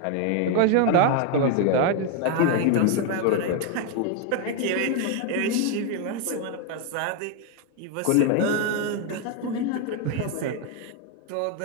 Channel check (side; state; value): both; different; correlation 0.01